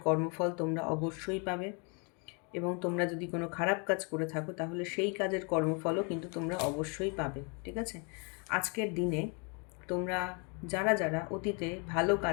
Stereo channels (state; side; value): quieter; right; 34.7 dB